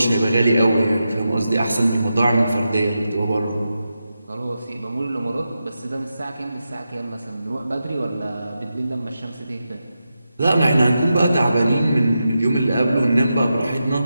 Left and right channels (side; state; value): both; inverted; correlation -0.89